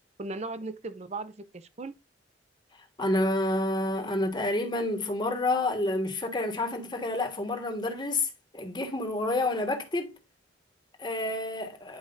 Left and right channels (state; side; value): normal; both; correlation 0.50